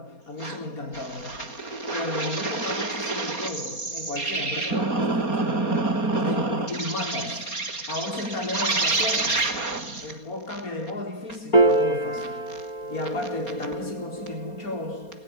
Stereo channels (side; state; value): right; late; 4.3 ms